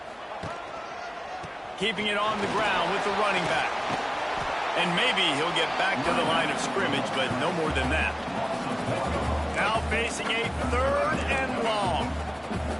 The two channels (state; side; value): identical; both; correlation 1.00